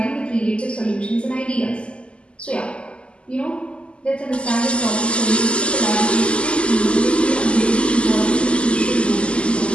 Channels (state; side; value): late; right; 0.054 ms